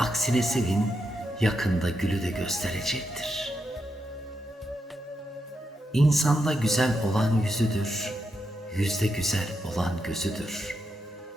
sevin, yakında gülü de gösterecektir. İnsanda güzel olan yüzüdür, yüzde güzel olan gözüdür.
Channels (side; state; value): both; normal; correlation 0.84